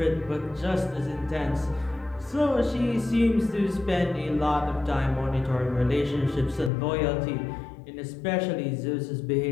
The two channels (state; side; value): drops out; right; at 6.7 s